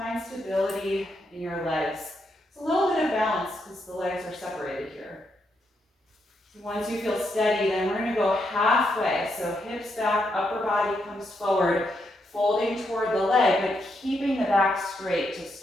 stability in your legs. It's a little bit of balance because the legs are separated here. So once you feel steady, then we're going to go halfway. So hips back, upper body comes forward, folding toward the leg, but keeping the back straight to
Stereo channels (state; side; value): normal; both; correlation 0.80